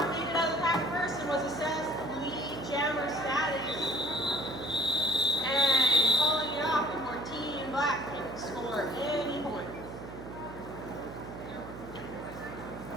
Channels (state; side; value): noise; right; hum, 12 dB below the sound